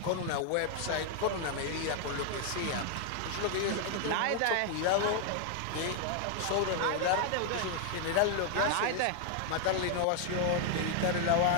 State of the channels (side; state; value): both; different; correlation 0.00